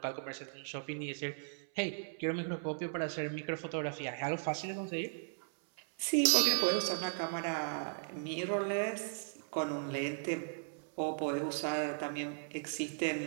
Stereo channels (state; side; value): silent; left; 53 dB below the other